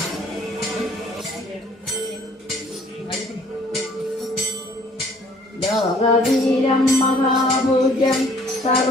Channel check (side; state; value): both; normal; correlation 0.58